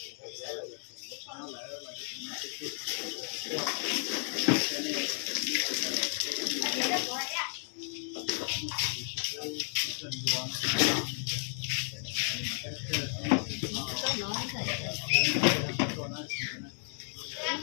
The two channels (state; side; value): silent; right; 56 dB below the other